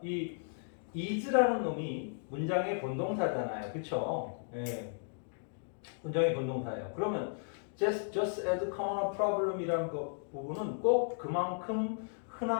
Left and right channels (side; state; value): right; silent; digital silence